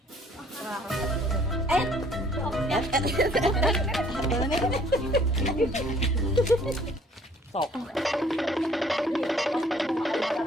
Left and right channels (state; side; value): normal; both; correlation 0.59